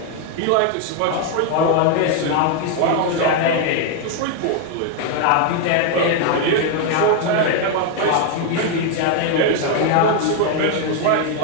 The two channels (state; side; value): different; both; correlation 0.01